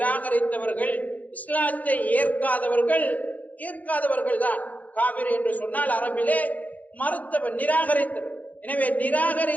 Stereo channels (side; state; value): right; late; 0.077 ms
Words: இஸ்லாத்தை ஏற்காதவர்கள் தான் காபிர் என்று சொன்னால் அரபிலே மறுத்தவர், நிராகரித்தவர். எனவே